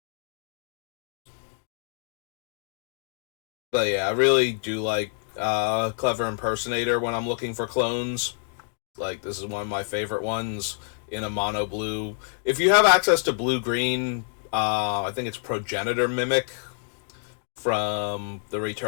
But yeah, I really do like Clever Impersonator when I'm looking for clones. Like, this is one of my favorite ones in a mono blue. If you have access to blue green, I think it's Progenitor Mimic from the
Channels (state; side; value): silent; right; digital silence